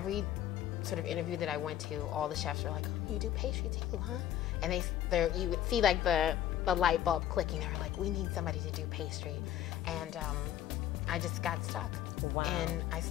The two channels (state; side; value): quieter; right; 11.6 dB